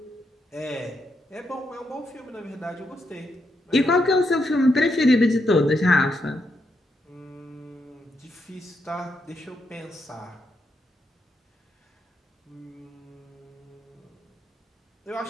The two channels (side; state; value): both; normal; correlation 0.81